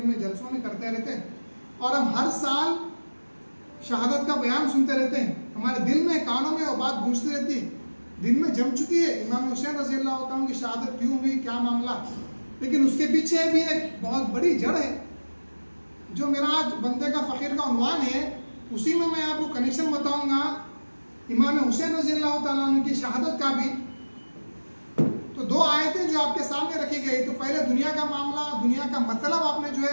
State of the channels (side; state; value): both; inverted; correlation -1.00